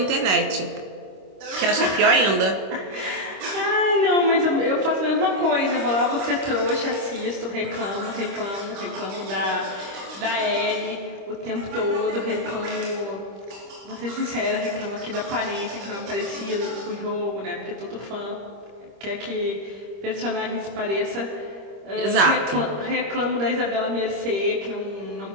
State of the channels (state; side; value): late; left; 25 ms